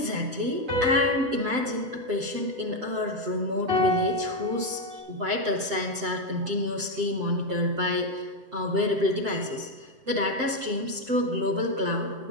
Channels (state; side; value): late; left; 7.8 ms